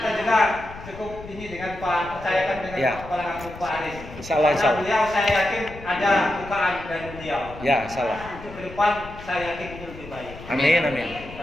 juga cukup ini dengan Pak, percayakan dengan Pak Kepala Kampung Pak Aris. Insyaallah. Beliau saya yakin ada bukaan dari beliau. Ya, salah. Untuk ke depan saya yakin itu lebih baik. Amin.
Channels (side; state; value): left; noise; rumble, 15 dB below the sound